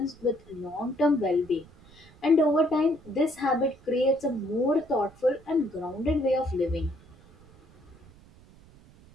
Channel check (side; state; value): right; noise; rumble, 25 dB below the sound